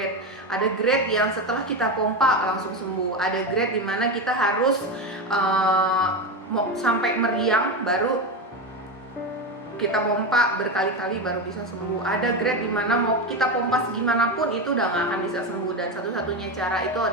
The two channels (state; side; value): normal; both; correlation 0.16